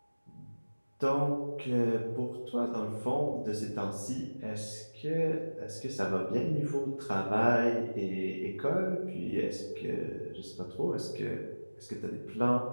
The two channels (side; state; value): both; inverted; correlation -1.00